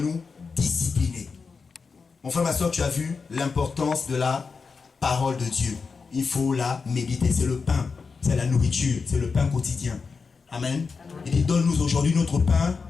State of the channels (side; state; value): right; quieter; 5.0 dB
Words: discipliner. Mon frère, ma soeur, tu as vu l'importance de la parole de Dieu. Il faut la méditer, c'est le pain, c'est la nourriture, c'est le pain quotidien. Amen. Il dit, donne-nous aujourd'hui notre pain